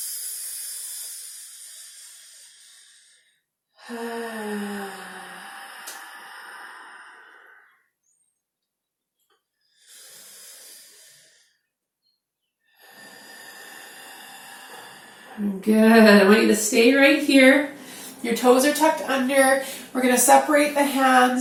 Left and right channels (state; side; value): identical; both; correlation 1.00